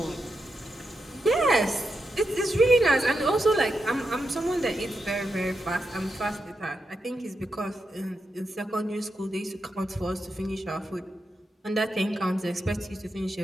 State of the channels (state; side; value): normal; both; correlation 0.86